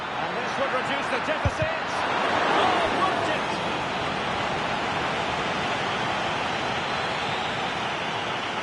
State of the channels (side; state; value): both; identical; correlation 1.00